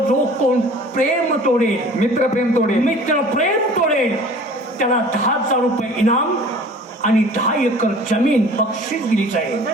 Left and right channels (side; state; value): both; normal; correlation 0.46